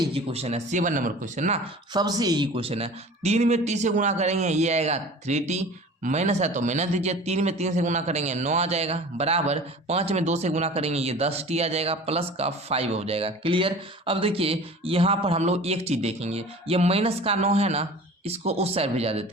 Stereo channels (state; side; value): normal; both; correlation 0.41